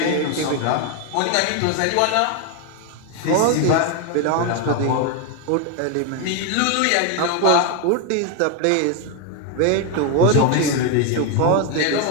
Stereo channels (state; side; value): different; both; correlation 0.01